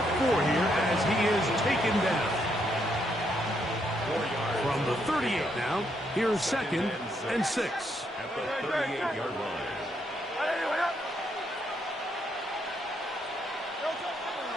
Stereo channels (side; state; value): both; normal; correlation 0.76